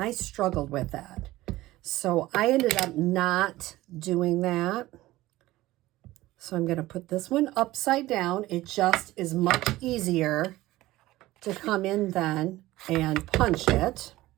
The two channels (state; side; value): quieter; left; 17.3 dB